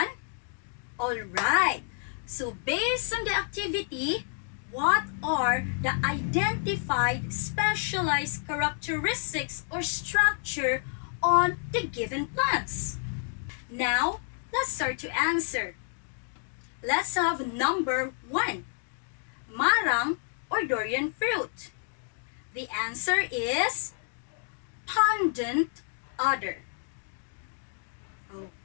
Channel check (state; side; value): silent; right; 58 dB below the other